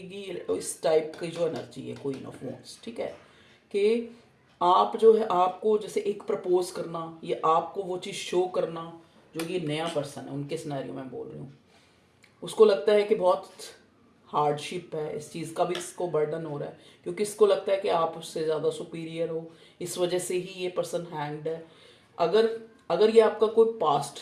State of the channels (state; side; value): identical; both; correlation 1.00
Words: इस टाइप की जो एनर्जी है क्वीन ऑफ वॉन्ड्स। ठीक है, कि आप जो है, आपको जैसे एक प्रपोज करना, ये आपको वो चीज़ शो करना, जो ये नया पर्सन है उनके सिनेरियो में बोल रही हूँ, उसको लगता है कि बहुत हार्डशिप है, इस चीज़ का भी इसको बर्डन हो रहा है, क्योंकि इसको लगता है कि आप उससे ज़्यादा सुपीरियर हो, इस वजह से ही ये पर्सन हैंग्ड है। अगर अगर ये आपका कोई पास्ट,